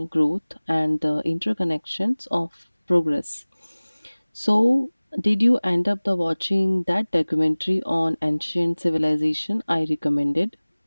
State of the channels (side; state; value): both; inverted; correlation -1.00